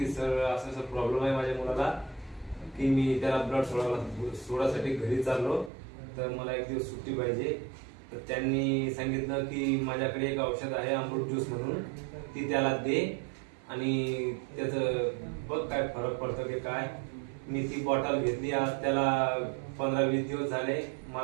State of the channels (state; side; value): drops out; left; at 5.7 s